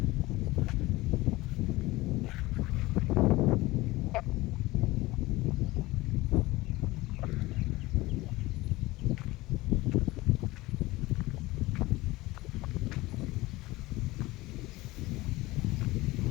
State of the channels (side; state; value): right; quieter; 19.8 dB